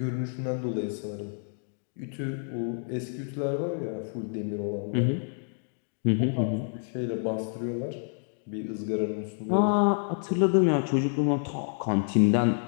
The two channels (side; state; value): right; silent; 59 dB below the other